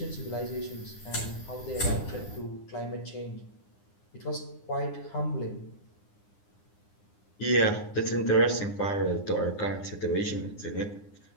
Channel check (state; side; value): late; right; 9.8 ms